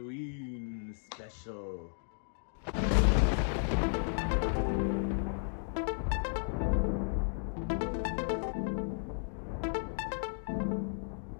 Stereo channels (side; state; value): right; silent; digital silence